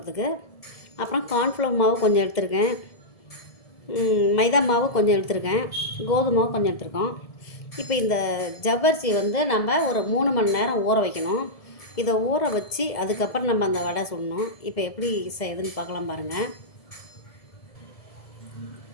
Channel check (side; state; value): right; late; 1.7 ms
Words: அப்புறம் கார்ன்ஃப்ளவர் மாவு கொஞ்சம் எடுத்திருக்கேன். மைதா மாவு கொஞ்சம் எடுத்திருக்கேன். கோதுமை மாவு கொஞ்சம் எடுத்திருக்கோம். இப்போ இந்த ஜவ்வரிசி நம்ம ஒரு 3 மணி நேரம் ஊற வைக்கணும். இதை ஊற வச்சு அதுக்கப்புறம் நம்ம அந்த வடை சுடணும். இப்போ எப்படி செய்யுதுன்னு பார்க்கலாம் பாருங்கள்.